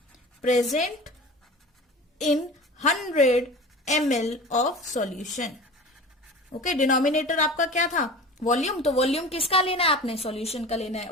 in 100 ml of solution. Okay, denominator आपका क्या था, वॉल्यूम, तो वॉल्यूम किसका लेना है आपने, सॉल्यूशन का लेना है.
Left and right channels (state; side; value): normal; both; correlation 0.36